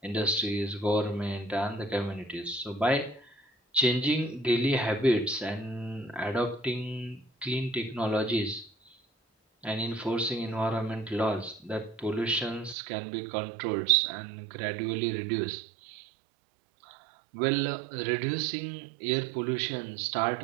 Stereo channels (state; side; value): drops out; left; at 12.8 s